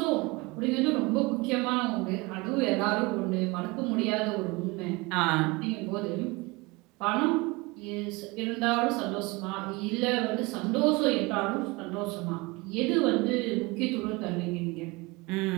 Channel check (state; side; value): quieter; left; 24.7 dB